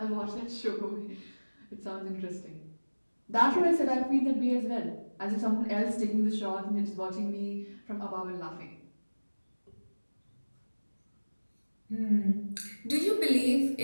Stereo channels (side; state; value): both; inverted; correlation -1.00